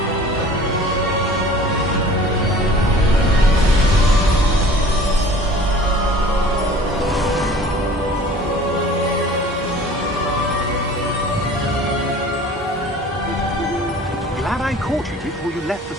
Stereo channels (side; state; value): both; normal; correlation 0.46